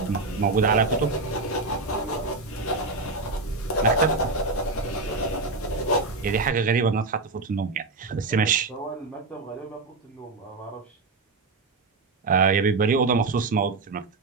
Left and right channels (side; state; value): left; quieter; 3.6 dB